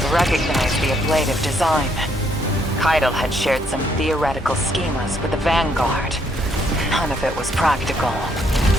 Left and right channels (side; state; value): both; normal; correlation 0.71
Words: Recognize the ablative design. Keitel had shared some theoretical schemas with the Vanguard. None of it was practical.